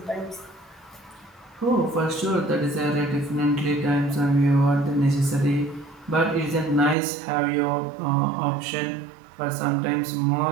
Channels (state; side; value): drops out; left; at 7.0 s